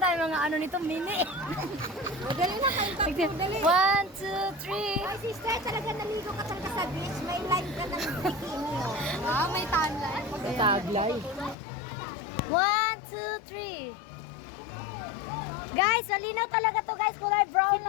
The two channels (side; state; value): right; drops out; at 11.6 s